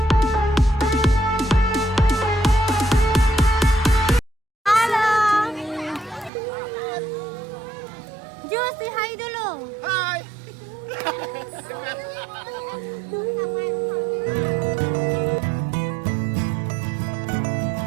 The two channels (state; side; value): drops out; left; at 6.3 s